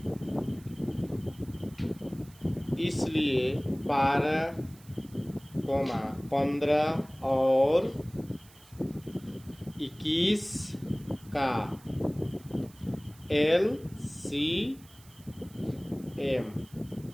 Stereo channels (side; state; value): right; noise; hiss, 24 dB below the sound